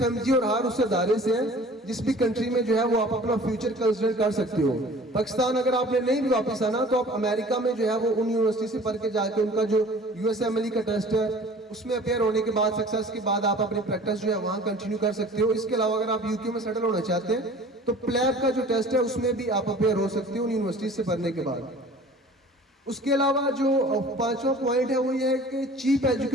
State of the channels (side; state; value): both; normal; correlation 0.46